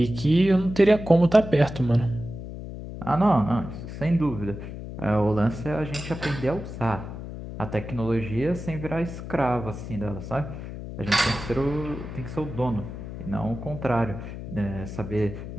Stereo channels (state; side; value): noise; left; hum, 9 dB below the sound